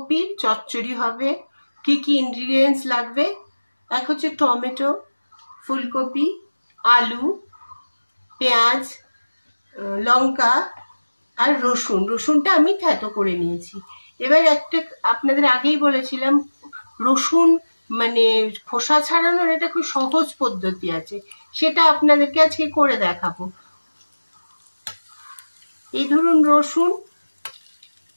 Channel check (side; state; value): both; inverted; correlation -1.00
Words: চচ্চড়ি হবে। কি কি ইনগ্রিডিয়েন্টস লাগবে? এক হচ্ছে টমেটো, ফুলকপি, আলু, পেঁয়াজ, লঙ্কা আর রসুন। রসুনটা আমি থেতো করে নিয়েছি। এবার একটা আপনাদের আগেই বলেছিলাম, রসুন মানে খোসা ছাড়ানোর একটা খুব সহজ পদ্ধতি আছে, সেটা আপনাদেরকে আজকে করে দেখাবো। এই ধরুন রসুন